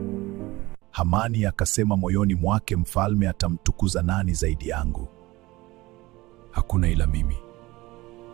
Hamani akasema moyoni mwake, mfalme atamtukuza nani zaidi yangu? Hakuna ila mimi.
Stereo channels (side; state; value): left; quieter; 20.0 dB